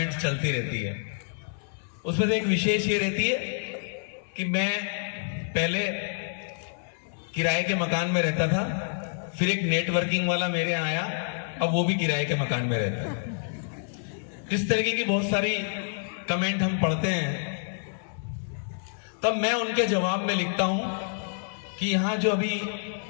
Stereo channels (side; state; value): right; silent; 59 dB below the other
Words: चलती रहती है। उसमें से एक विशेष ये रहती है कि मैं पहले किराए के मकान में रहता था, फिर एक नेटवर्किंग वाला मेरे यहाँ आया, अब वो भी किराए के मकान में रहता है। इस तरीके की बहुत सारी कमेंट हम पढ़ते हैं। तब मैं उनके जवाब में लिखता हूं कि यहां जो अभी